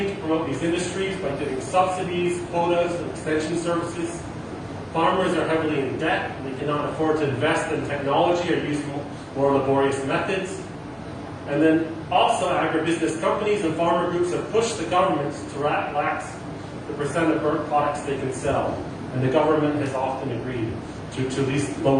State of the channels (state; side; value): identical; both; correlation 1.00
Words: to promote these industries by giving subsidies, quotas, and extension services. Farmers are heavily in debt, and they cannot afford to invest in technology or use more laborious methods. And then also agribusiness companies and farmer groups have pushed the governments to relax the percent of burnt products they can sell. And the government has often agreed to at least